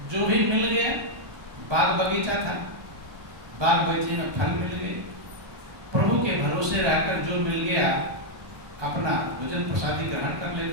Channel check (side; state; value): left; late; 1.2 ms